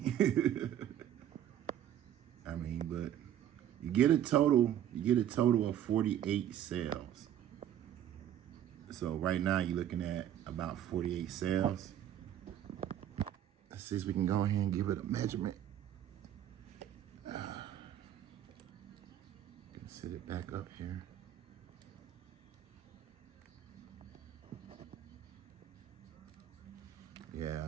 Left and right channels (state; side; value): quieter; left; 11.0 dB